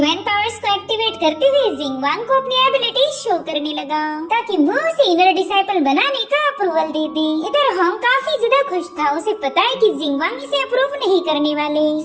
पावर्स को एक्टिवेट करते हुए जिंगवांग को अपनी एबिलिटी शो करने लगा ताकि वो उसे इनर डिसाइपल बनाने का अप्रूवल दे दे। इधर हॉन्ग काफी ज्यादा खुश था, उसे पता है कि जिंगवांग इसे अप्रूव नहीं करने वाले।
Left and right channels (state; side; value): identical; both; correlation 1.00